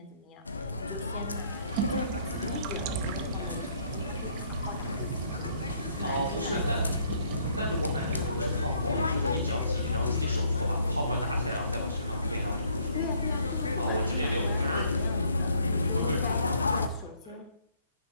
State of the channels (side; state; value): both; inverted; correlation -0.65